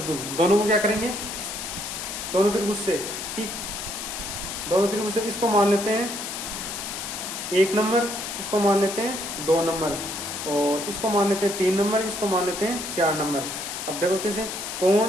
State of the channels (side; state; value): left; noise; hiss, 6 dB below the sound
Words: दोनों को क्या करेंगे, दोनों त्रिभुज से कि दोनों त्रिभुज से इसको मान लेते हैं 1 नंबर, इसको मान लेते हैं 2 नंबर, और इसको मान लेते हैं 3 नंबर, इसको मान लेते हैं 4 नंबर। अब देखो कैसे, कोण